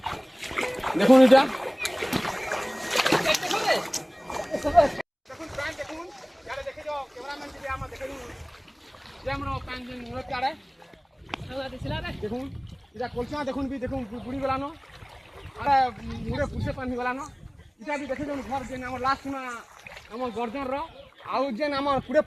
देखुन इटा দেখুন এটা কলচা দেখুন বি দেখুন বুড়ি গলানো আরে মুড়ে পুষে পানি গলানো এটা বি দেখে দেখুন ঘর যেন আমার লাস্ট না আমার গর্জন র আউ যেন আমার পুরে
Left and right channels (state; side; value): identical; both; correlation 1.00